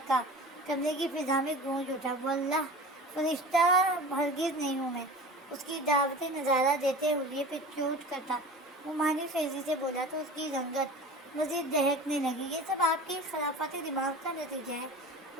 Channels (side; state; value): both; normal; correlation 0.36